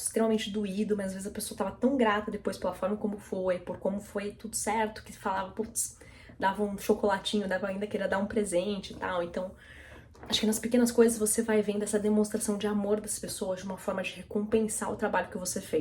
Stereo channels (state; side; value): identical; both; correlation 1.00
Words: extremamente doído, mas às vezes a pessoa tava tão grata depois pela forma como foi, por como foi tudo certo, que falava, putz, dava um chocolatinho, dava ainda queria dar um presente e tal. Então, acho que nas pequenas coisas você vai vendo essa demonstração de amor das pessoas, de uma forma de recompensar o trabalho que você